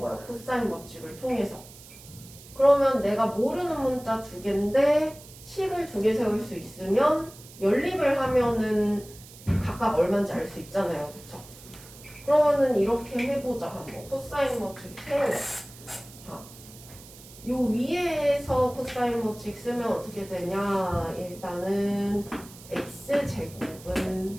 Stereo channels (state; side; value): noise; right; hiss, 19 dB below the sound